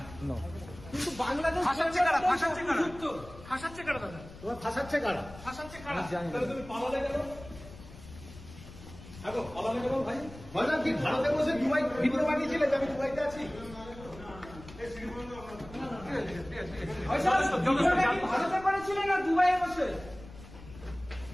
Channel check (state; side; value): noise; left; rumble, 17 dB below the sound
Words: নো। কিন্তু বাংলাদেশ ফাঁসাচ্ছে কারা? ফাঁসাচ্ছে কারা? ফাঁসাচ্ছে কারা দাদা? তোমার ফাঁসাচ্ছে কারা? ফাঁসাচ্ছে কারা? আমি জানি না। তাহলে তুমি পালালে কেন? দেখো পালালে কেন ভাই? ভাইজান কি ভারতে বসে দুবাই ভিডিও বানিয়েছিলে যে আমি দুবাইতে আছি? ভারতে করেছিলেন না দুবাইয়ে বসে?